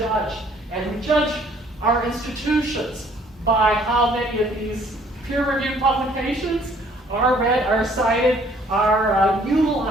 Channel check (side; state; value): both; normal; correlation 0.60